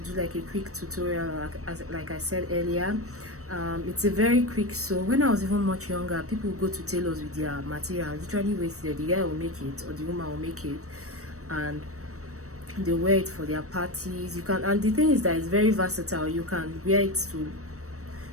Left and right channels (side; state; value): left; late; 0.65 ms